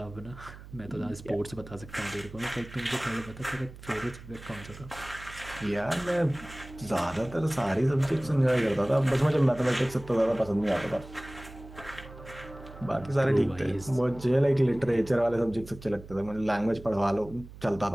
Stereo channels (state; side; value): noise; right; hum, 16 dB below the sound